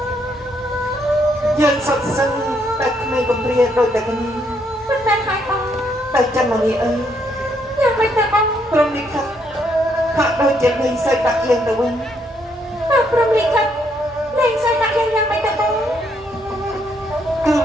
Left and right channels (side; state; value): both; normal; correlation 0.73